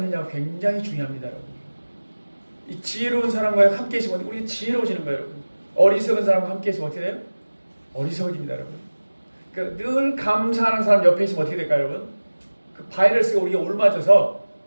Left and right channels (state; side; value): inverted; both; correlation -1.00